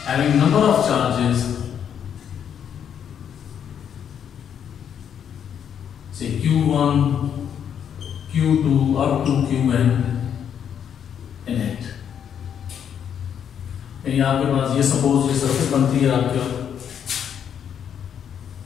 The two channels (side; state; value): right; quieter; 8.5 dB